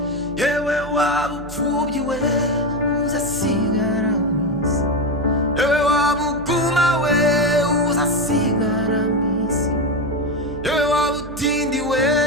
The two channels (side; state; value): right; noise; hum, 14 dB below the sound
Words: yewe wabupfubyi we uzasigara mwisi yewe wabuguma we uzasigara mwisi yewe wabutindi we